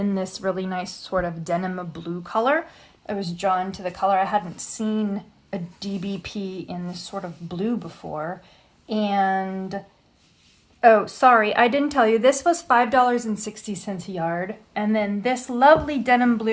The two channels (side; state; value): both; identical; correlation 1.00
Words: this really nice sort of denim blue color. I was drawn to the color. I hadn't seen a DBP in this sort of blue before. And oh, sorry, I didn't tell you, this was $5.60 a yard. And then this lovely denim